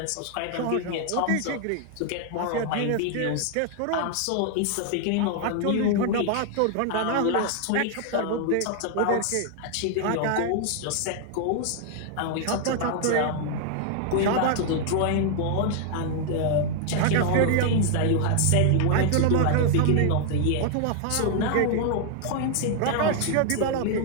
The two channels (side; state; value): both; different; correlation 0.00